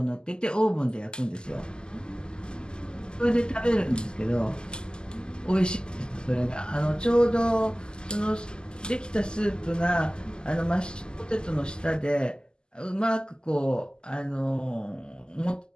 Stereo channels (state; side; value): late; right; 0.046 ms